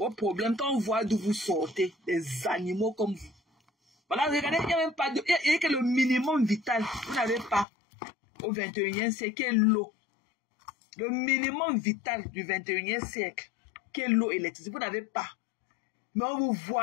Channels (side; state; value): right; drops out; at 7.7 s